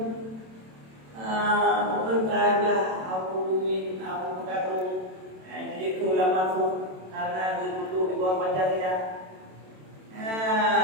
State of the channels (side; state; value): left; late; 27 ms